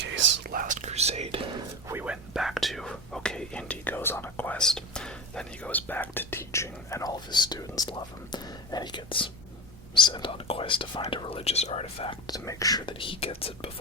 Last Crusade, we went back to, okay, Indy goes on a quest, then he goes back to teaching, and all of his students love him, and he gets sent on a quest to find a religious artifact to make sure that he gets it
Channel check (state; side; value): normal; both; correlation 0.26